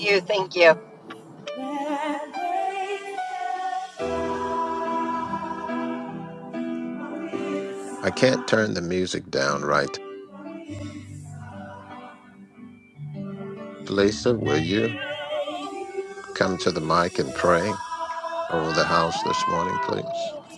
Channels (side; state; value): both; identical; correlation 1.00